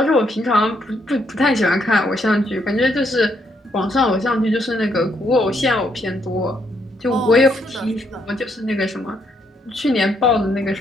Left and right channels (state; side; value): normal; both; correlation 0.74